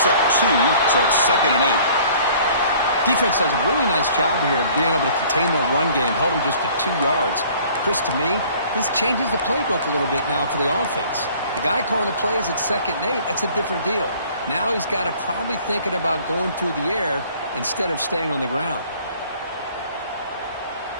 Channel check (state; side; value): inverted; both; correlation -0.53